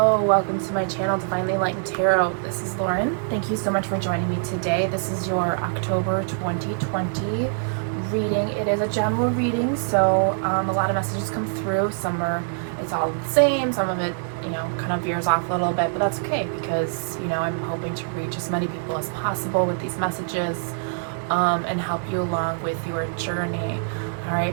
welcome to my channel, Divinely Enlightened Tarot. This is Lauren. Thank you so much for joining me today. This is your October 2020 reading. It is a general reading, so a lot of messages come through. It's all the same. Some of it, kind of veers off a little bit, but that's okay because, I'm hoping to reach as many people as possible with these messages and help you along with your journey. All right,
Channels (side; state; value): left; silent; digital silence